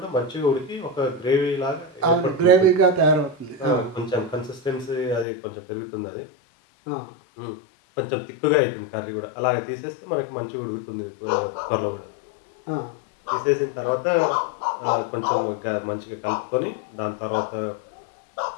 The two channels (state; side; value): drops out; right; at 5.2 s